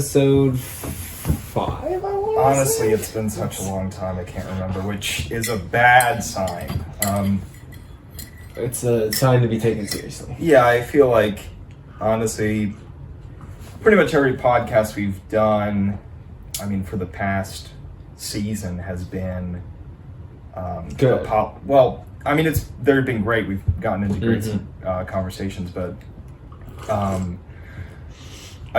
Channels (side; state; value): both; identical; correlation 1.00